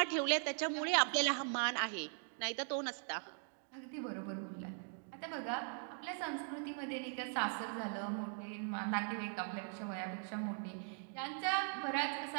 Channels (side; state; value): left; silent; 51 dB below the other